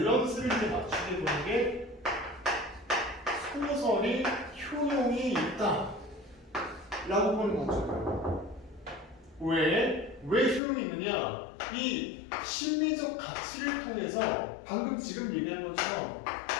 이제 맞추게 보는 게 소설이 효용이 있다 라고 보는 관점이에요. 왜 효용이 있느냐? 이 심리적 가치를 통해서 방금 지금 얘기한 것처럼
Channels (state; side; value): drops out; right; at 10.6 s